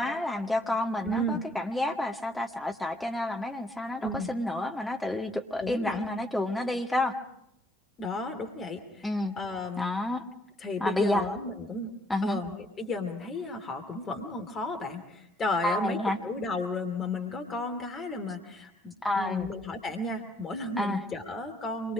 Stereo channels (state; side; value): normal; both; correlation 0.68